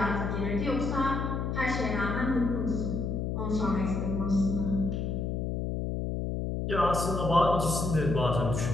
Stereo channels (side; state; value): left; noise; hum, 1 dB below the sound